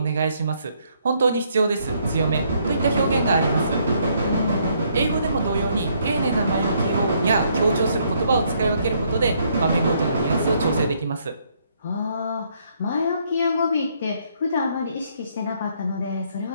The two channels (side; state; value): both; inverted; correlation -0.70